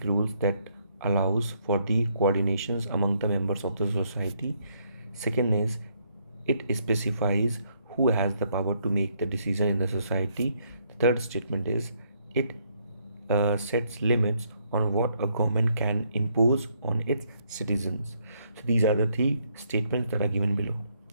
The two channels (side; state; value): both; inverted; correlation -0.72